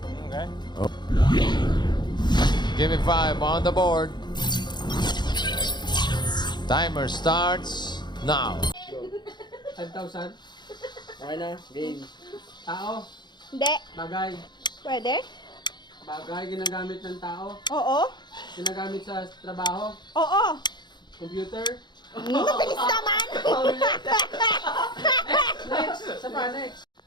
Okay. Give me 5 on the board. Timer starts now. 5,000. Okay na, game. Tao, Hindi. bagay. Pwede? Bagay, ginagamit ng tao. Oo. Ginagamit sa trabaho. Oo. Computer. Bilis naman! Next! Sa pa, next.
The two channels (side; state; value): right; late; 0.21 ms